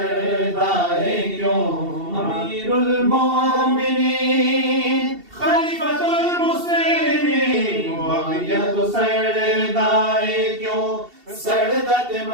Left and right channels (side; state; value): left; late; 2.7 ms